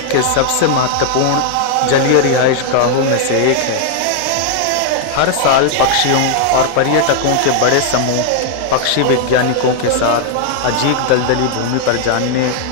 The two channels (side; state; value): both; different; correlation 0.00